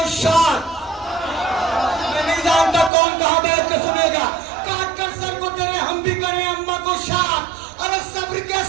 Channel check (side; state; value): left; drops out; at 2.9 s